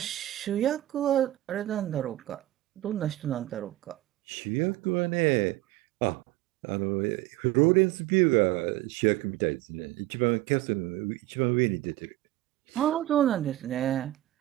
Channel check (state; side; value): quieter; left; 15.9 dB